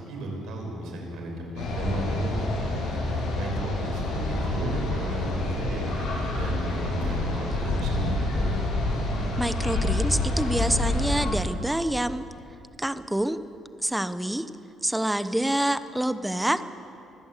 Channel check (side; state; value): both; normal; correlation 0.77